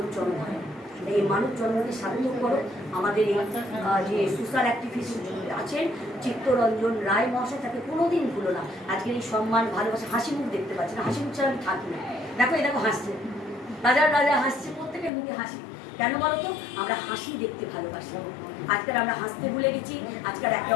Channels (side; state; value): right; drops out; at 15.1 s